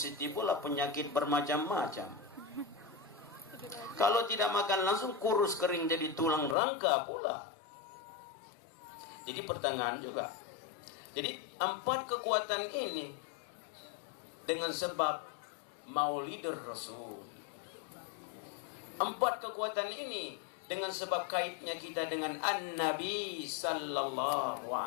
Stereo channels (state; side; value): drops out; right; at 6.6 s